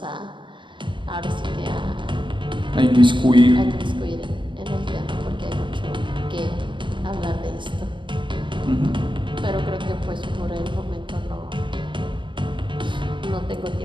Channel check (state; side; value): late; left; 0.23 ms